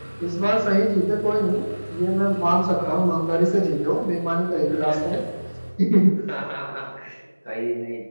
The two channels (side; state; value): both; inverted; correlation -1.00